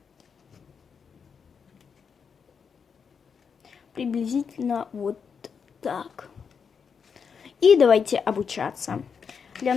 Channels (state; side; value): quieter; right; 6.3 dB